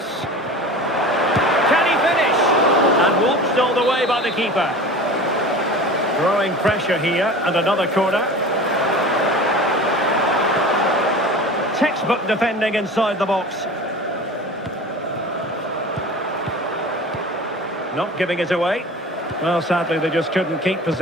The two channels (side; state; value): both; normal; correlation 0.37